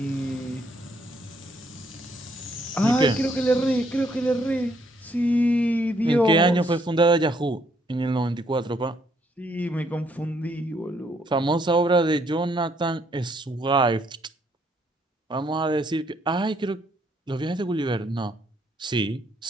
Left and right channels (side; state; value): both; normal; correlation 0.70